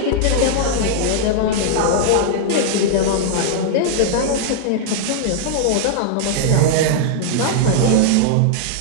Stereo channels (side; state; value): both; different; correlation -0.01